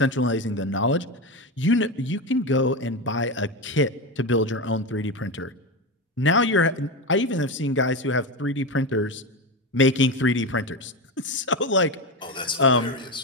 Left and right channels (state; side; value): normal; both; correlation 0.17